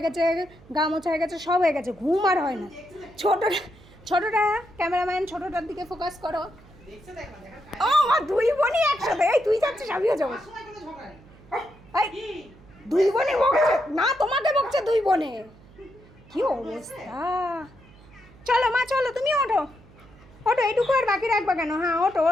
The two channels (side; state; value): right; noise; hum, 24 dB below the sound